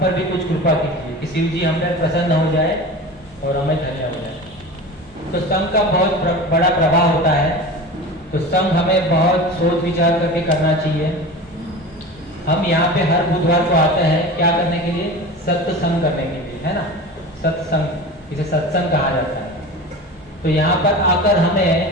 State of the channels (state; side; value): normal; both; correlation 0.32